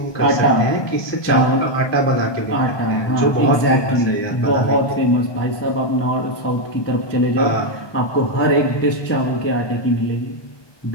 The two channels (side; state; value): right; late; 1.2 ms